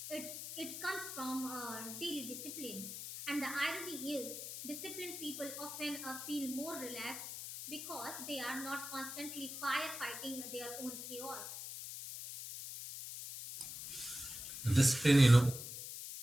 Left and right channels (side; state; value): left; noise; hiss, 8 dB below the sound